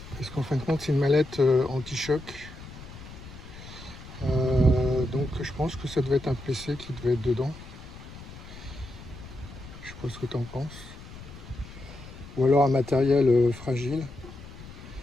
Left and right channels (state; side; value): noise; left; rumble, 15 dB below the sound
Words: Parce qu'en fin de compte, c'est une mallette anti-choc. Donc je pense que ça devait être un PC qui devait être dedans. Je sais pas ce que tu en penses. Ou alors un matériel fragile.